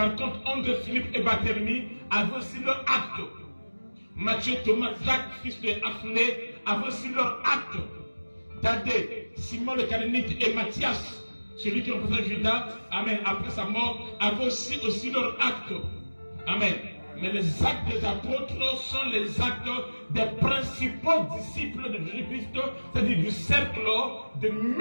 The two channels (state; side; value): inverted; both; correlation -1.00